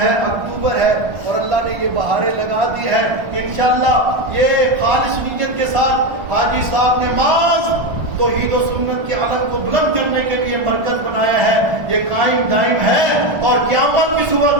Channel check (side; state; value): left; late; 1.4 ms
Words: اکتوبر ہے اور اللہ نے یہ بہاریں لگا دی ہے. انشاءاللہ یہ خالص نیت کے ساتھ حاجی صاحب نے محض توحید و سنت کے علم کو بلند کرنے کے لیے مرکز بنایا ہے. یہ قائم دائم ہے اور قیامت کی صبح